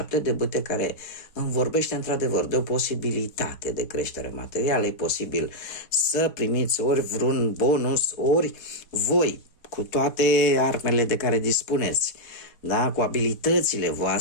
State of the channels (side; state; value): right; late; 4.1 ms